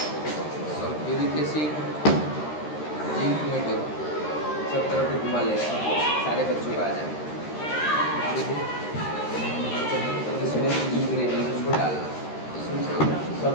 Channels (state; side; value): late; right; 13 ms